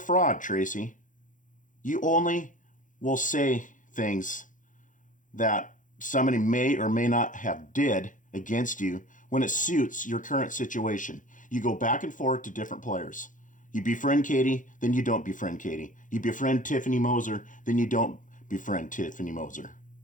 Tracy. You only will say things that somebody may or may not have did against you when it suits your current situation. You go back and forth to different players. You befriend Katie, then you don't befriend Katie. You befriend Tiffany Moser, then you don't befriend Tiffany Moser.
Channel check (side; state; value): right; late; 0.38 ms